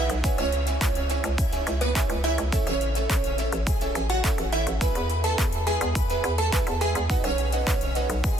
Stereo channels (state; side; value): normal; both; correlation 0.73